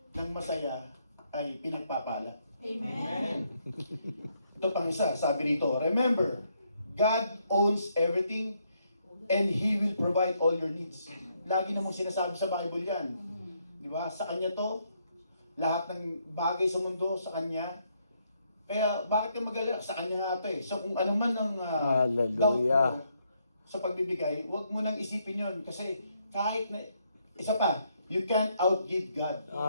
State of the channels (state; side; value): inverted; both; correlation -0.74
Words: ng masaya ay pinagpapala. Amen. Ito pang isa, sabi rito, remember, God owns everything and He will provide all your needs. Lagi namang sinasabi sa Bible yan. Di ba? Sa Kanya to, lahat ng bagay sa mundo sa Kanya. Kaya bakit ka mag-alala? Sa Kanya nga ito eh. So kung ano man ang doubt Hallelujah. mo sa pagbibigay, huwag mo nang isipin yon kasi kahit na, isa pa, you can't outgive God.